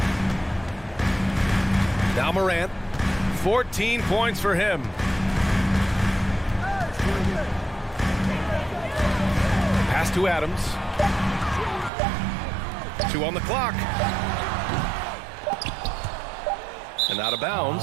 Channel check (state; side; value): drops out; left; at 11.9 s